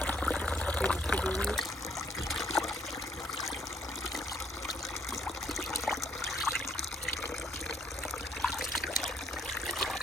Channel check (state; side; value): normal; both; correlation 0.66